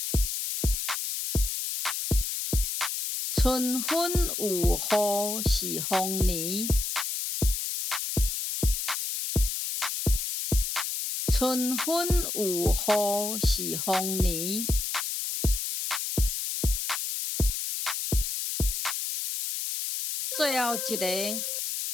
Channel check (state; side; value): noise; left; hiss, 3 dB below the sound